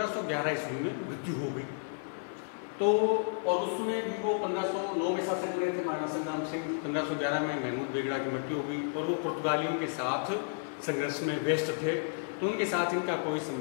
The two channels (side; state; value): right; silent; 56 dB below the other